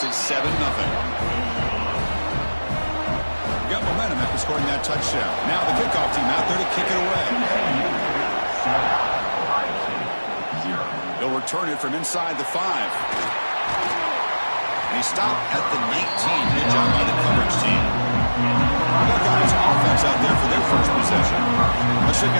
it 7-0. Got momentum after scoring that touchdown. Now the kickoff team out there to kick it away. They'll return it from inside the 5. And he stopped at the 19. Good job by the coverage team. Buckeyes offense out there for their first possession. Let's check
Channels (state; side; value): inverted; both; correlation -1.00